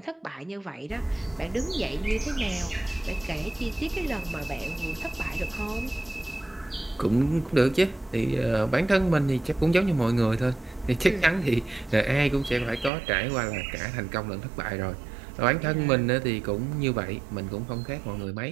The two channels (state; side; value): drops out; left; at 12.9 s